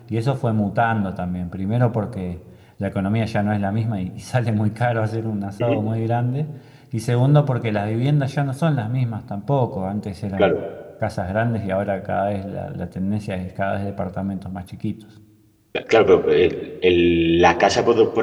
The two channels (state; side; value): identical; both; correlation 1.00